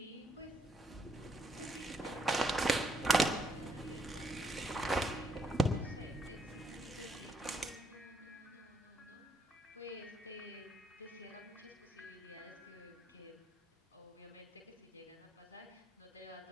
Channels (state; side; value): normal; both; correlation 0.73